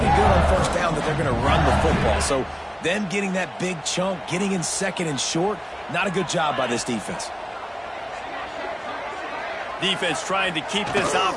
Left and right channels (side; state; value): both; identical; correlation 1.00